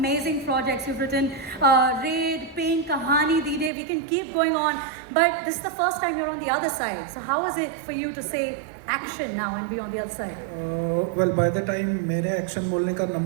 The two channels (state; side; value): drops out; left; at 3.7 s